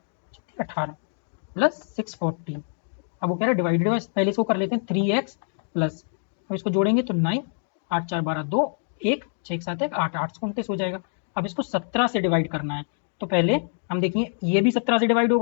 18 प्लस 640। अब वो कह रहा है डिवाइडेड बाय, पहले इसको कर लेते हैं 3x प्लस, अब इसको जोड़ेंगे तो 9 8 4 12 2 1 6 7 1 8 8 29 हो जाएगा। अब इसको 17 से डिवाइड करना है, तो पहले हम देखिए ये भी 17 से डिवाइड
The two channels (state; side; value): silent; right; digital silence